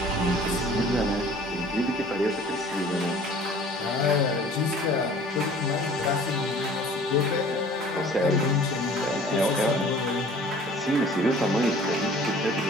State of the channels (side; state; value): both; normal; correlation 0.49